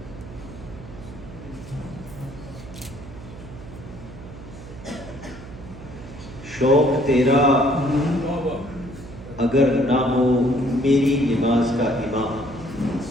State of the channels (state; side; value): noise; right; hum, 15 dB below the sound